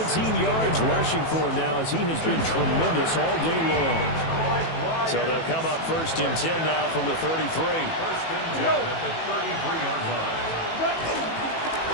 yards rushing for him now as he has been tremendous all day long. So they'll come up 1st and 10 now from the 33. 1st and 10 at the 33-yard line.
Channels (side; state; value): right; late; 18 ms